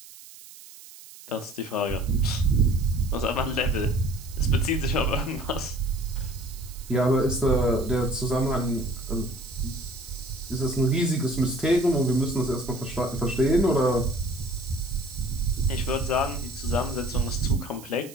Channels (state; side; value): noise; right; hiss, 18 dB below the sound